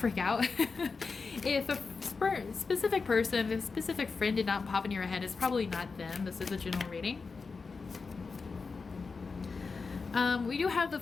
out. If a specific person, if a specific friend did not pop in your head, it's probably not them. This is a general reading. We do have the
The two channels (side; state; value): right; quieter; 4.6 dB